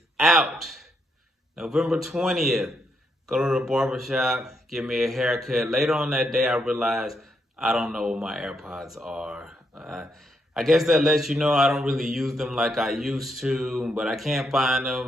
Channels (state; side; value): normal; both; correlation 0.78